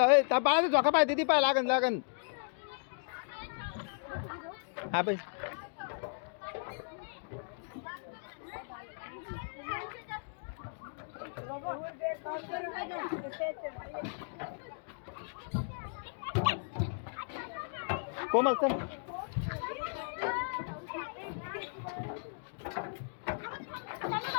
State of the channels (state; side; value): silent; right; digital silence